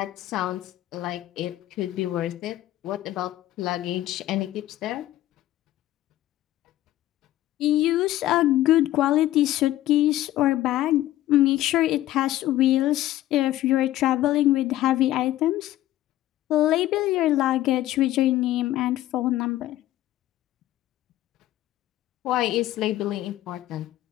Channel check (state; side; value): quieter; right; 14.5 dB